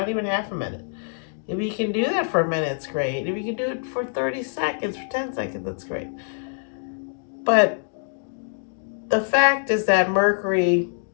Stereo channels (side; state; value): right; silent; digital silence